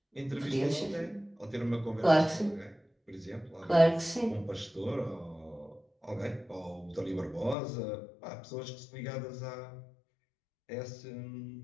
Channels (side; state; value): right; drops out; at 7.6 s